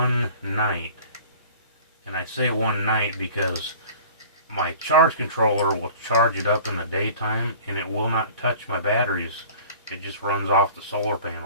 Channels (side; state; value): both; inverted; correlation -0.45